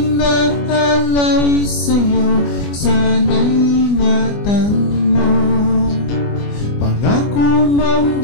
na alay sa'yo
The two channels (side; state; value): right; late; 25 ms